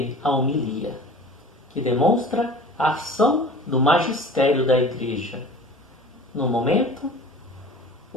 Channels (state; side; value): normal; both; correlation 0.41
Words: a homilia, que demonstra a ação do magistério da Igreja. No momento,